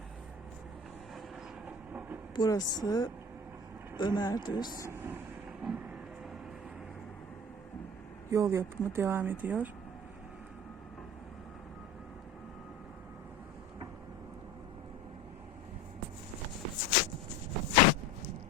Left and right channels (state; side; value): normal; both; correlation 0.37